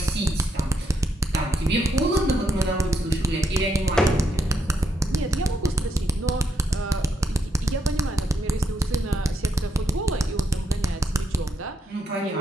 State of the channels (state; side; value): normal; both; correlation 0.78